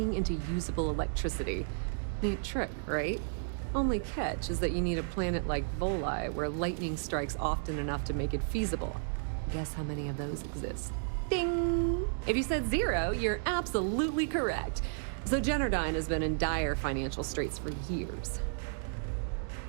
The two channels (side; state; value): left; silent; digital silence